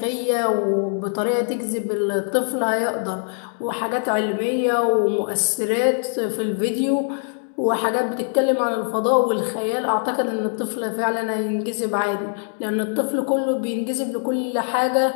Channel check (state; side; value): silent; right; 61 dB below the other